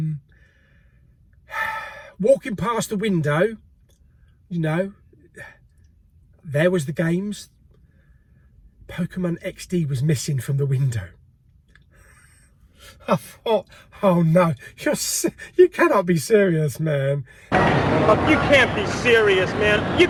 Walking past the window, you know, there was the games. Pokemon XD was missing from the window. I thought, oh no, you cannot be serious, man. Oh, you can't be serious, man. You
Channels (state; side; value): identical; both; correlation 1.00